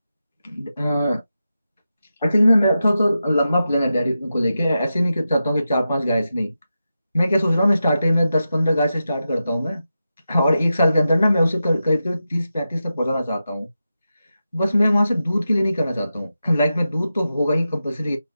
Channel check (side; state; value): both; inverted; correlation -0.90